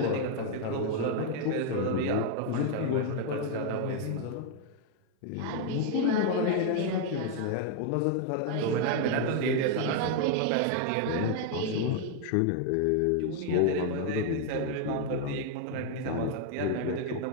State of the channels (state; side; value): different; both; correlation 0.00